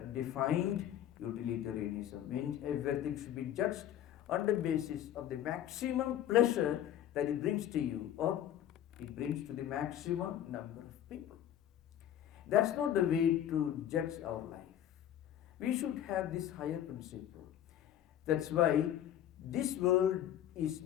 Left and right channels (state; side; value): quieter; right; 11.1 dB